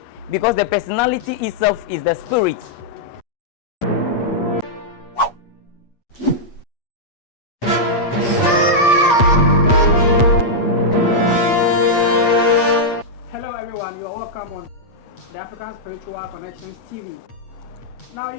because the personality itself is the spirit. Hello everyone, you are welcome on the African Spiritual Connections TV. Now,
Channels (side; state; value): right; late; 8.4 ms